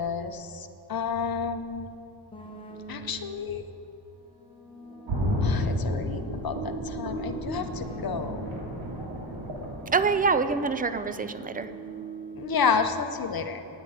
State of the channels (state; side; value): normal; both; correlation 0.16